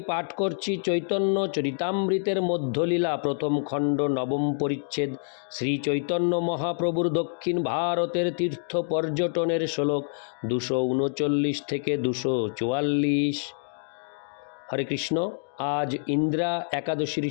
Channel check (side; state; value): right; silent; digital silence